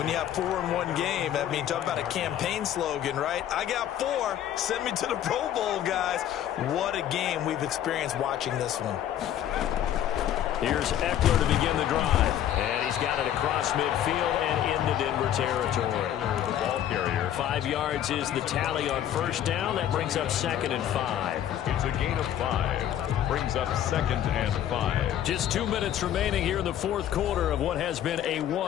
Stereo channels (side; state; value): right; quieter; 11.0 dB